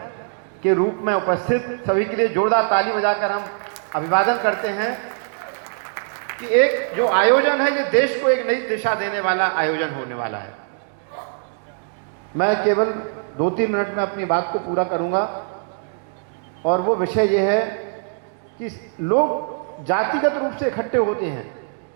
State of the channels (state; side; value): silent; left; 64 dB below the other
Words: के रूप में उपस्थित सभी के लिए जोरदार ताली बजाकर हम अभिवादन करते हैं कि एक जो आयोजन है ये देश को एक नई दिशा देने वाला आयोजन होने वाला है। मैं केवल 2-3 मिनट में अपनी बात को पूरा करूंगा और वो विषय ये है कि लोग जातिगत रूप से इकट्ठे होते हैं